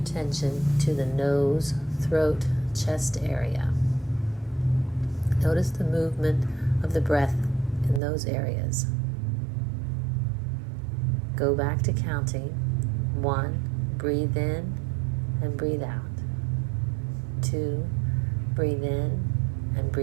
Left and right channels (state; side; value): drops out; left; at 8.0 s